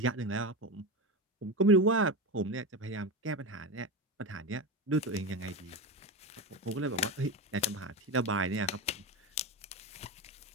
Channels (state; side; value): normal; both; correlation 0.20